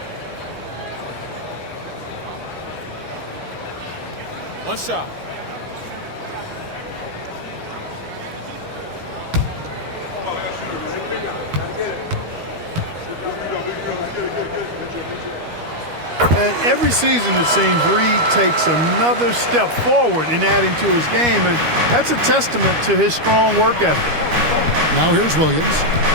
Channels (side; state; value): left; late; 13 ms